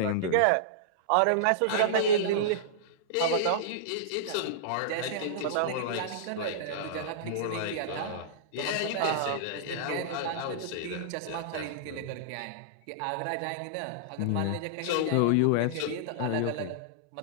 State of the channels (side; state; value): both; different; correlation -0.02